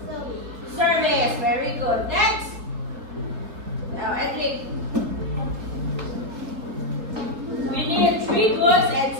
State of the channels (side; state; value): left; late; 4.1 ms